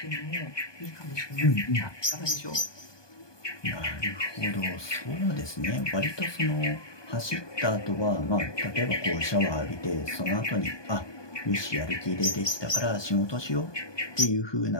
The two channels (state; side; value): late; right; 1.2 ms